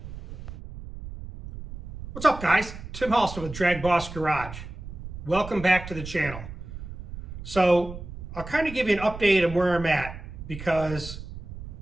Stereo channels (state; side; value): noise; right; rumble, 11 dB below the sound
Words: What's up, guys? Tim Halston with DragBoss Garage. Welcome back to the channel. So I'll kind of give you an update on where I'm at because